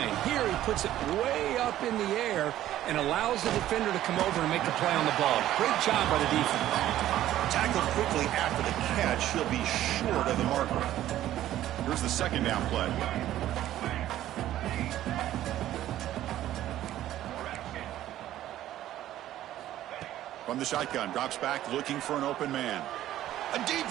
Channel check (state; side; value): quieter; left; 13.2 dB